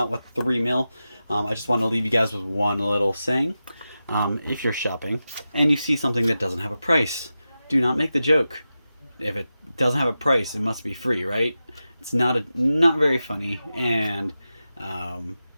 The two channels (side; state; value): both; inverted; correlation -0.92